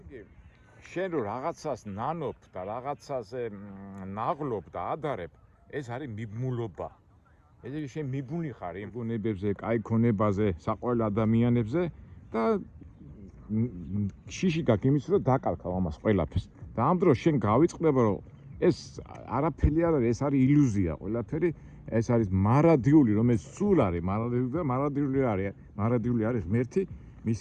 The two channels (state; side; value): identical; both; correlation 1.00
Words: შენ რო რაღაცას ნანობ და რაღაცაზე ნაღლობ და ადარებ, ეს არის მიბმულობა. ესე იგი შენ მიბმული ხარ იმ გონებებზე, კაი ქონებაზე, საყვარელ ადამიანებზე და შიში გაქვს იმის რომ დაკარქავ ამას ყველაფერს. და ამ დროს შენ გავიწყდება რომ ეს არაფერი არ არის, ეს არის ილუზია, ყველაფერი ეს არის მარადიული, რომელიც სულ არის მარადიული და მარადიული არის ღმერთი,